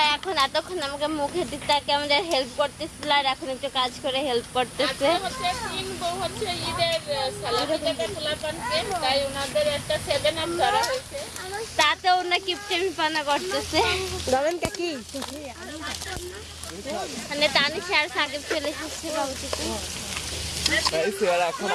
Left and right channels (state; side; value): identical; both; correlation 1.00